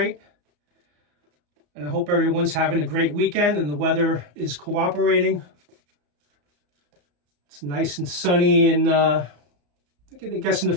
And I hope everyone's having a great weekend and the weather is cooperating. It's nice and sunny and I guess in the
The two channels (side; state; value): left; late; 34 ms